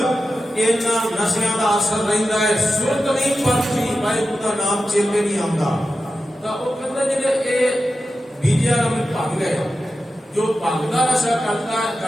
ਇਹਨਾਂ ਨਸ਼ਿਆਂ ਦਾ ਅਸਰ ਰਹਿੰਦਾ ਹੈ, ਸੁਰਤ ਨਹੀਂ ਪਰਤੀ, ਵਾਹਿਗੁਰੂ ਦਾ ਨਾਮ ਚੇਤੇ ਨਹੀਂ ਆਉਂਦਾ। ਤਾਂ ਉਹ ਕਹਿੰਦਾ ਜਿਹੜੇ ਇਹ ਬੀਜਿਆ ਨੂੰ ਭੰਗ ਹੈ, ਜੋ ਭੰਗ ਦਾ ਨਸ਼ਾ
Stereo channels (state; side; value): normal; both; correlation 0.92